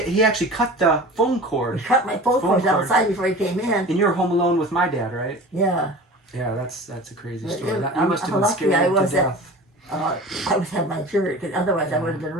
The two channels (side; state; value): both; normal; correlation 0.38